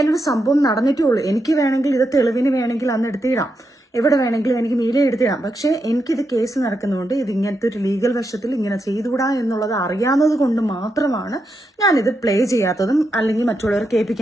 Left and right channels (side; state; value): both; normal; correlation 0.84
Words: സംഭവം നടന്നിട്ടേ ഉള്ളൂ. എനിക്ക് വേണമെങ്കിൽ ഇത് തെളിവിന് വേണമെങ്കിൽ അന്ന് എടുത്തിടാം, എവിടെ വേണമെങ്കിലും എനിക്ക് മീഡിയ എടുത്തിടാം. പക്ഷേ എനിക്കിത് കേസ് നടക്കുന്നതുകൊണ്ട് ഇത് ഇങ്ങനത്തെ ഒരു ലീഗൽ വശത്തിൽ ഇങ്ങനെ ചെയ്തുകൂടാ എന്നുള്ളത് അറിയാവുന്നത് കൊണ്ട് മാത്രമാണ് ഞാനിത് പ്ലേ ചെയ്യാത്തതും അല്ലെങ്കിൽ മറ്റുള്ളവർ